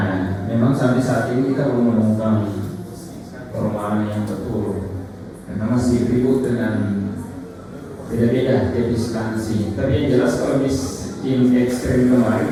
memang sampai saat ini kita belum menemukan perumahan yang betul, karena masih ribut dengan beda-beda jenis instansi. Tapi yang jelas kalau miskin ekstrim kemarin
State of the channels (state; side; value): identical; both; correlation 1.00